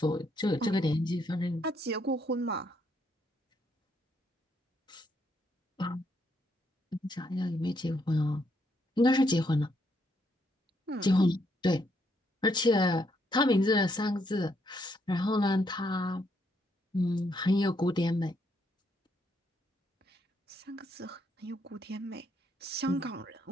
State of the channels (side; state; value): both; normal; correlation 0.74